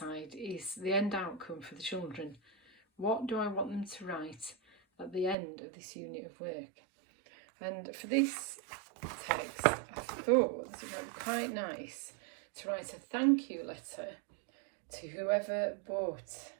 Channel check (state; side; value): drops out; left; at 5.4 s